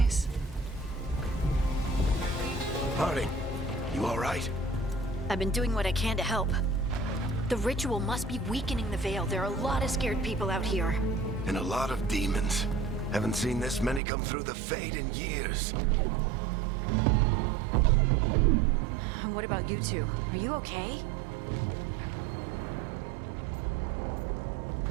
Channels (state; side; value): drops out; left; at 14.0 s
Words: Harding, you all right? I've been doing what I can to help. The ritual must be weakening the Veil. There are a lot of scared people out here. And a lot of demons. Haven't seen this many come through the Fade in years. And what about you two? Are you okay?